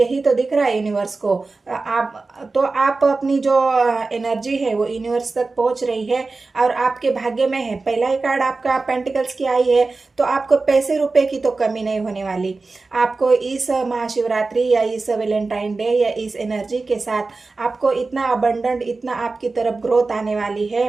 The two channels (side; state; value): left; quieter; 3.8 dB